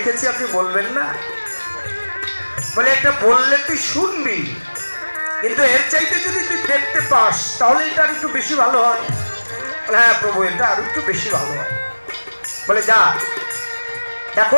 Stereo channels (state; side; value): inverted; both; correlation -1.00